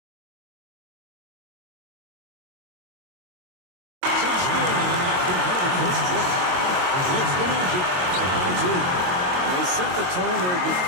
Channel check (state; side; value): late; left; 22 ms